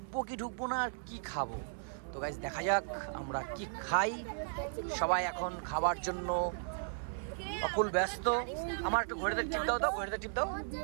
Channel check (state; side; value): silent; left; 54 dB below the other